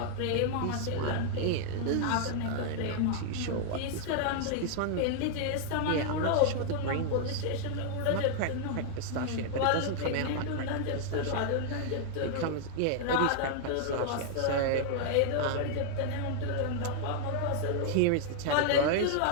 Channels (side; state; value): both; different; correlation 0.00